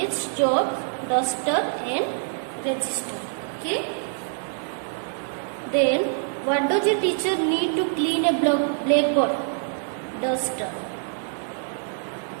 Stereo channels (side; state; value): left; silent; 62 dB below the other